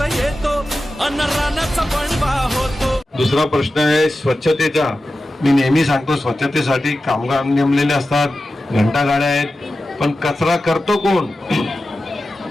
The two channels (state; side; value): normal; both; correlation 0.93